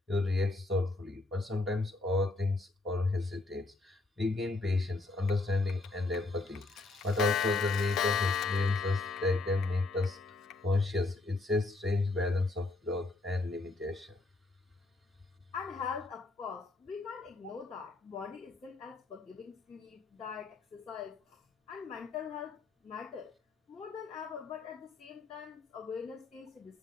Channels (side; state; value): right; quieter; 3.2 dB